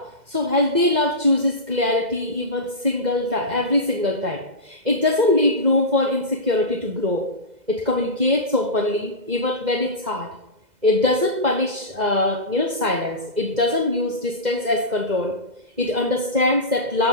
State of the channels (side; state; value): left; late; 2.0 ms